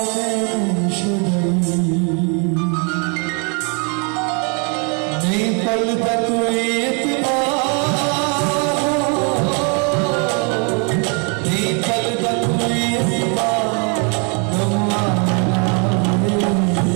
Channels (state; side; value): quieter; left; 35.8 dB